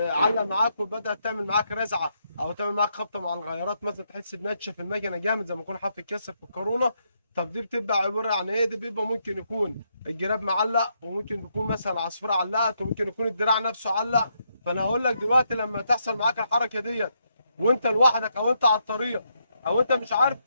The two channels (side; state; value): both; inverted; correlation -0.78